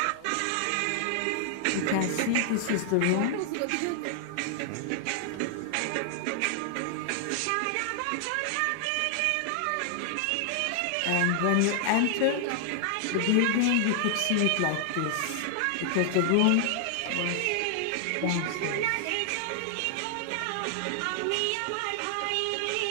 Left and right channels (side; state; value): both; different; correlation 0.00